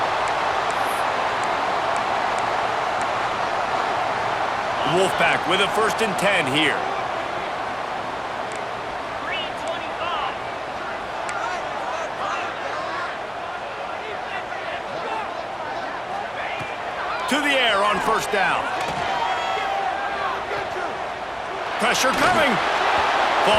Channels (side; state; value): both; identical; correlation 1.00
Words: Wolfpack with a 1st and 10 here. To the air on 1st down. Pressure coming.